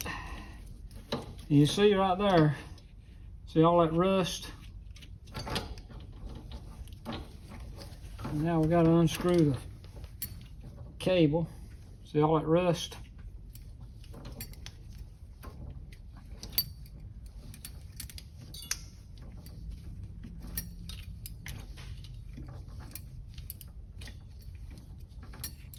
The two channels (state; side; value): identical; both; correlation 1.00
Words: You see right there, see all that rust? And now we got to unscrew the cable. See all that rust?